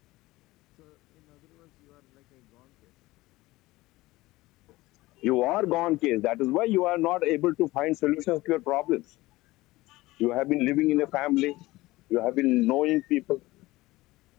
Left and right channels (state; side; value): quieter; right; 19.2 dB